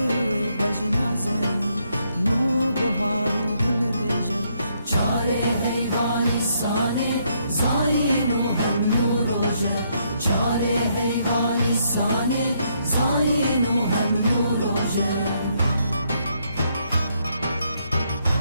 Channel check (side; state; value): both; inverted; correlation -0.74